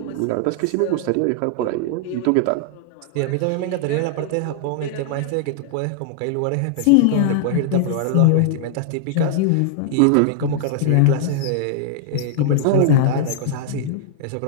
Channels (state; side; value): different; both; correlation -0.01